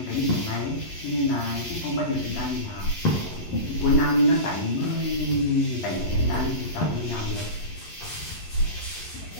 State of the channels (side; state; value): right; late; 11 ms